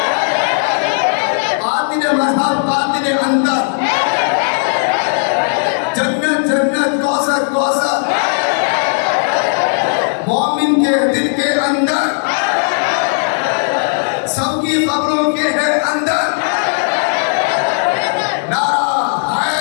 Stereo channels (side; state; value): right; silent; digital silence